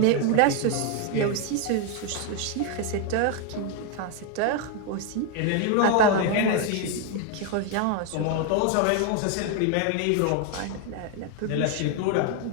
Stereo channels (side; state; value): both; different; correlation 0.01